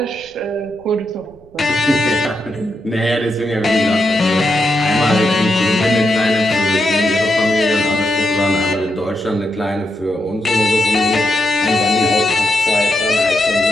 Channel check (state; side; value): noise; right; rumble, 28 dB below the sound